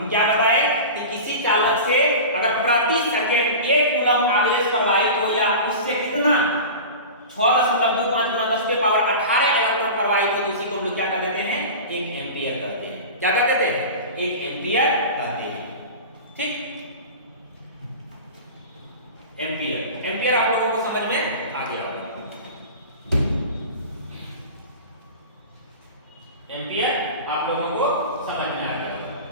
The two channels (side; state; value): both; inverted; correlation -0.32